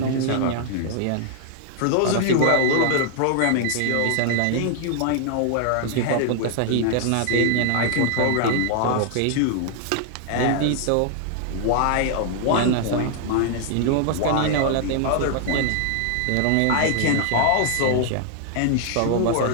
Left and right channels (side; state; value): both; different; correlation 0.00